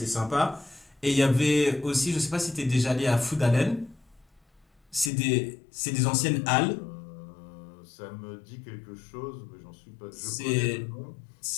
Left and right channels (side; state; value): right; drops out; at 5.1 s